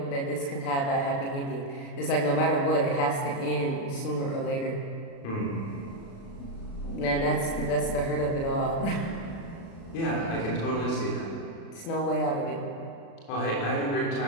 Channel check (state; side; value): late; right; 36 ms